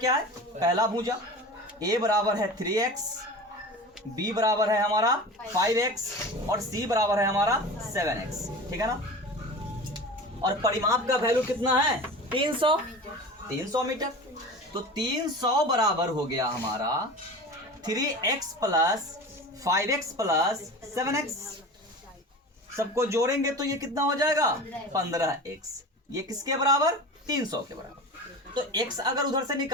है? पहला भुजा। a बराबर है 3x, b बराबर है हमारा 5x और c बराबर है हमारा 7x, ठीक है ना। और परिमाप का वैल्यू कितना है? 300 मीटर। तो 300 बराबर हो गया हमारा 3x plus 5x plus 7x। सबको जोड़ेंगे तो ये कितना हो जाएगा? 15x। ये किसके बराबर? 300 के बराबर। तो x अगर उधर से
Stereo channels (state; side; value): normal; both; correlation 0.33